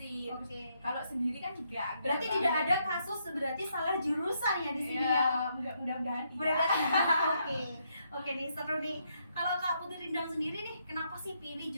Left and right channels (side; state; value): both; inverted; correlation -0.75